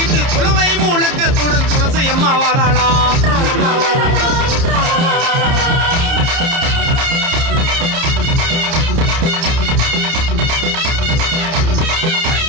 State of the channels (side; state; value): left; late; 30 ms